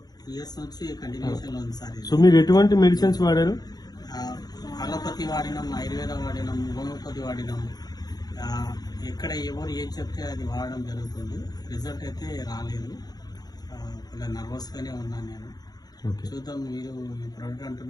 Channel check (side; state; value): right; late; 0.19 ms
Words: years నుంచి కంటిన్యూషన్ లో ఉంది సార్. సో మీరు ఎటువంటి మెడిసిన్స్ వాడారు? అలోపతి వాడినాం, ఆయుర్వేద వాడినాం, హోమియోపతి వాడినాం. ఎక్కడ ఎవరు ఏం చెప్తే అది వాడడం జరుగుతుంది. రిజల్ట్ అయితే రాలేదు. కొంచెం నర్వస్ గానే ఉన్నాను నేను. చూద్దాం, మీరు ఈ ప్రోడక్ట్